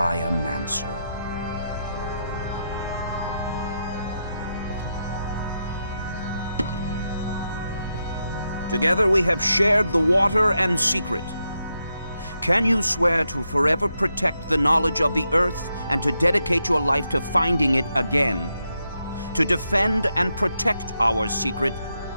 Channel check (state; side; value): inverted; both; correlation -0.84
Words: Mancer. Together we have shared the water and secret. Can you swear to forever protect the knowledge of the Earth and to dedicate your life to finding it again? To defend and protect our secret,